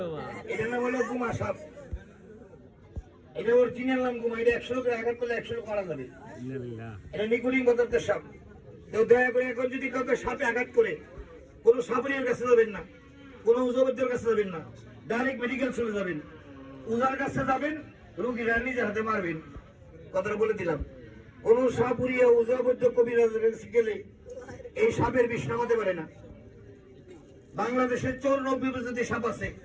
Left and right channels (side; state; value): both; identical; correlation 1.00